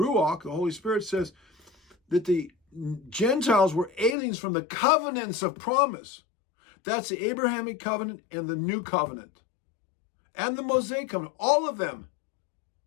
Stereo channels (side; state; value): right; drops out; at 4.2 s